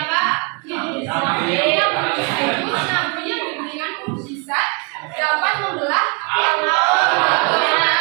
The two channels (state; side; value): quieter; left; 32.5 dB